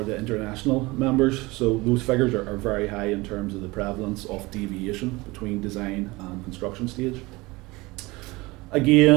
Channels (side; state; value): left; quieter; 22.5 dB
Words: the international members. So those figures are very high in terms of the prevalence of deviation between design and construction stage.